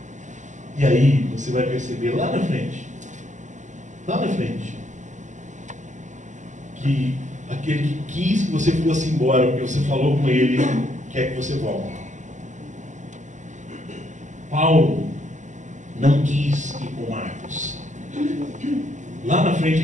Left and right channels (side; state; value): left; late; 0.35 ms